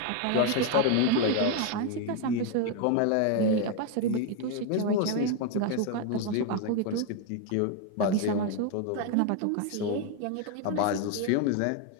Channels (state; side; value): different; both; correlation 0.01